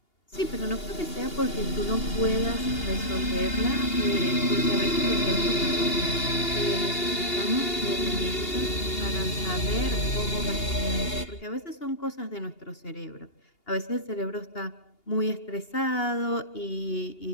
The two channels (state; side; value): late; right; 2.8 ms